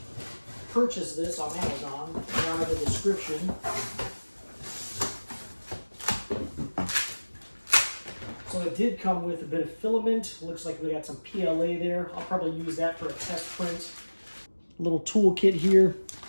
purchase this on Amazon down in the description. So it did come with a bit of filament. Looks like we got some PLA there. I'll probably use that for a test print. A little toolkit here.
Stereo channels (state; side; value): inverted; both; correlation -1.00